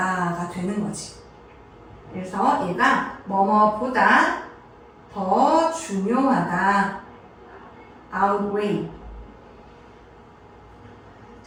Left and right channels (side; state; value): both; identical; correlation 1.00